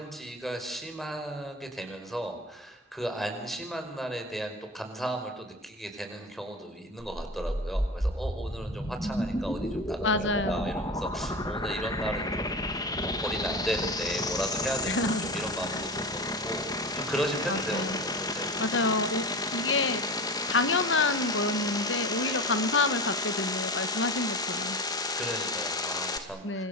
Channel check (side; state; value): both; normal; correlation 0.27